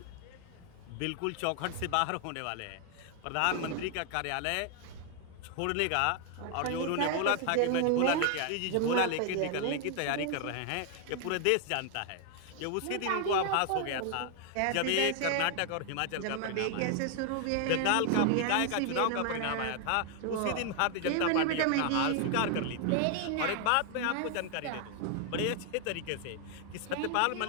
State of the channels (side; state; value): both; different; correlation 0.00